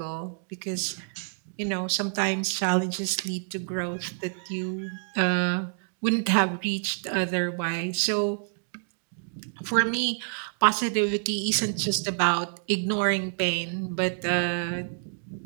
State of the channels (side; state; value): left; silent; digital silence